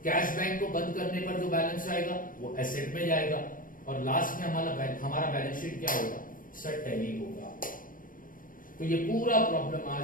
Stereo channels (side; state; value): right; late; 0.40 ms